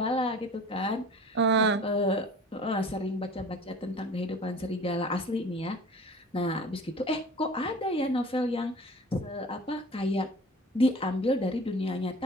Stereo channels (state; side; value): normal; both; correlation 0.42